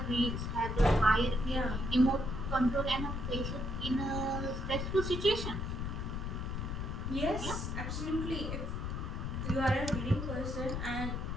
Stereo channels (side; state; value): left; noise; rumble, 3 dB below the sound